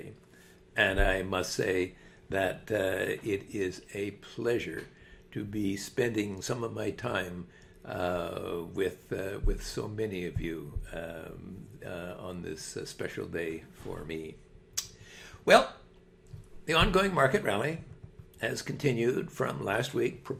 and I must say that it is a pleasure to be spending some of my time with so many of you on this special day for me. Well, the ongoing market rally has continued from last week,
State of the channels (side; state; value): both; identical; correlation 1.00